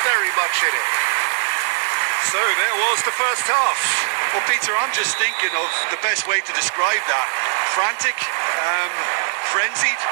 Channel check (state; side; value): silent; left; digital silence